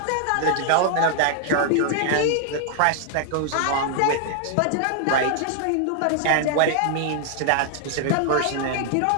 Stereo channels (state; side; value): different; both; correlation 0.00